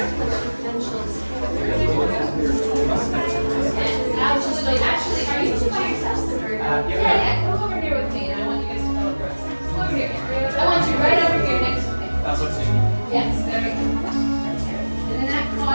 Actually, are you two by yourselves? Yeah, come over here with me, and I want you guys to come over. Come over here. I want you right over here next to me. That's what's in. Yes, there we go. And in that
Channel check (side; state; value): both; inverted; correlation -1.00